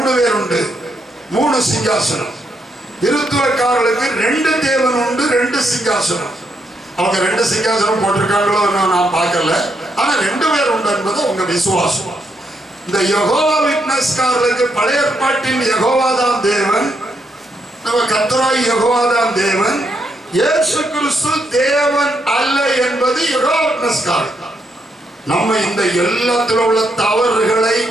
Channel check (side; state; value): both; normal; correlation 0.78